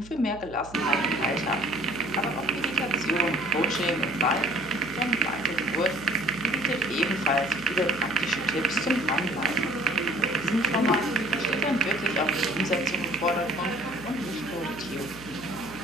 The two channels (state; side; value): noise; right; hum, 18 dB below the sound